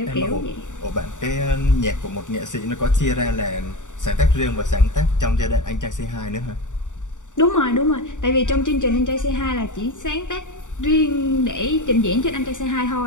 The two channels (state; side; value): late; right; 0.86 ms